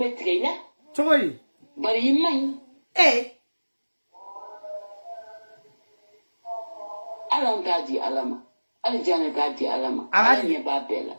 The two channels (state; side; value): inverted; both; correlation -1.00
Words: tigɛ i la cogo di bari i man ɲi ala an t'a di ala ma hali Janɛ t'a di ala ma ala ɲɛ b'a bɛɛ la